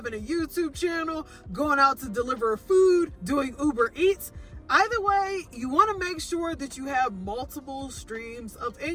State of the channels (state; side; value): identical; both; correlation 1.00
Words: a YouTube channel, going out to deliver food, doing Uber Eats. Either way, you want to make sure that you have multiple streams of